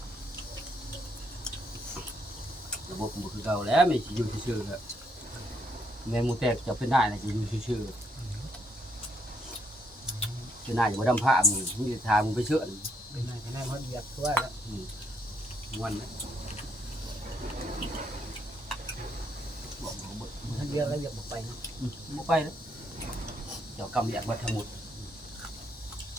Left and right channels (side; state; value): both; normal; correlation 0.73